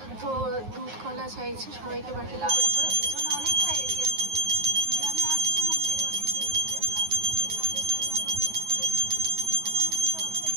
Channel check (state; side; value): late; left; 9.5 ms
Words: তো দুধ কলা চাইছে সবাইকে বাকি করে পিছনে অনেকটা এরিয়া জুড়ে। আমি আসছি মন্দিরে অনেকদিন ধরে, কাজের জন্য